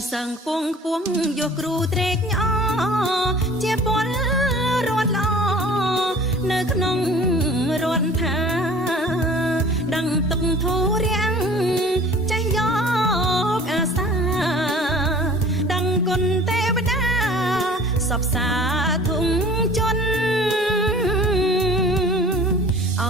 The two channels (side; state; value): both; normal; correlation 0.46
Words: សឹងពងខ្ពស់យកគ្រូត្រេកអជាពលរដ្ឋល្អនៅក្នុងរដ្ឋថាដឹងទុកធូររាំងចេះយកអាសាដឹងគុណទេវតាសពសាធុងជន់អោ